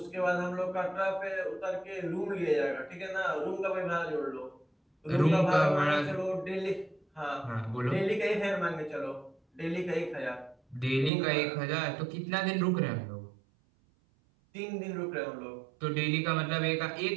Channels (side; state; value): left; drops out; at 11.1 s